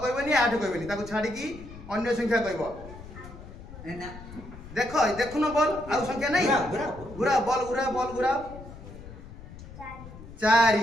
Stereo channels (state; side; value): noise; left; rumble, 15 dB below the sound